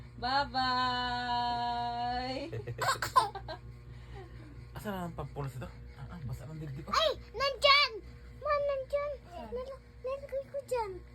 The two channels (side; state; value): both; identical; correlation 1.00